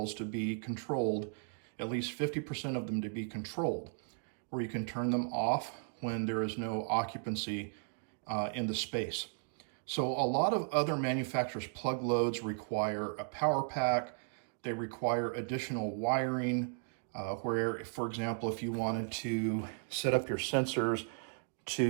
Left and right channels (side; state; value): left; silent; digital silence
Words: to be controlled, at least 50% of them to be controlled, where you can turn them off when there is no occupancy in the space. So a lot of other manufacturers' plug loads require a power pack. They require additional wiring where, for example, if you wanted to set up your sensors